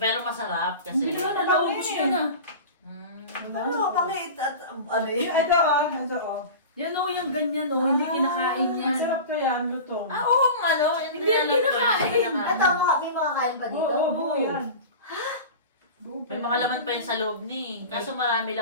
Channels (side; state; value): both; inverted; correlation -0.33